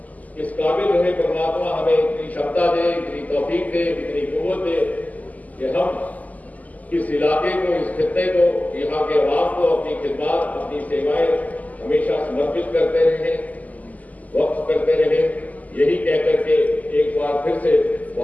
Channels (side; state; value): right; late; 0.077 ms